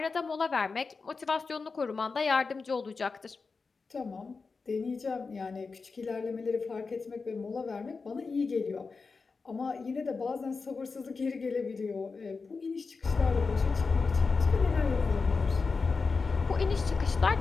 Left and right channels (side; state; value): right; quieter; 4.5 dB